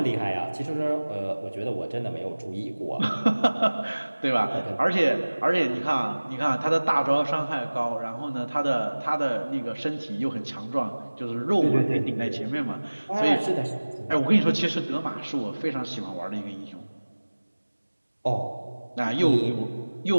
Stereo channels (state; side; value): inverted; both; correlation -1.00